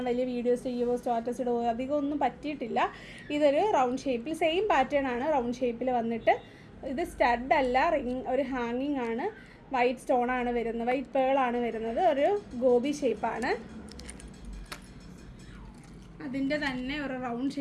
വലിയ വീഡിയോസ് ചെയ്യുമോ സ്റ്റാറ്റസ് ഇടുമോ അധികം ഒന്നും പറ്റിയിട്ടില്ല. ഇതൊരു റൗണ്ട് ഷേപ്പിൽ സെയിം പാറ്റേൺ ആണ്, റൗണ്ട് ഷേപ്പിൽ വന്നിട്ട് ഇത് സ്റ്റഡ് അല്ല, ഒരു ഹാങ്ങിങ് ആണ്. വൈറ്റ് സ്റ്റോണാണ് വരുന്നത്, വൈറ്റ് പേളാണ് വരുന്നത്. ഒരു ഗോബി ഷേപ്പാണ്, അതിൻ്റെ തന്നെ ഒരു റൗണ്ട്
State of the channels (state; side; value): identical; both; correlation 1.00